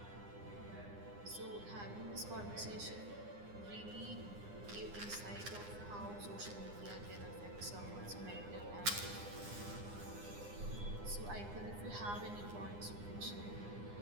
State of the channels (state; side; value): late; left; 9.8 ms